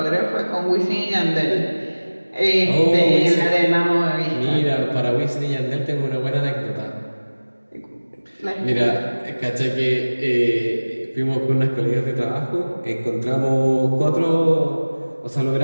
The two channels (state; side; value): inverted; both; correlation -1.00